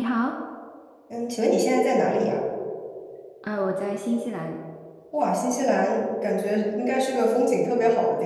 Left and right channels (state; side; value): identical; both; correlation 1.00